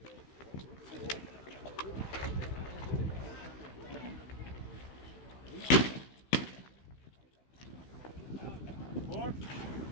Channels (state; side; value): late; right; 15 ms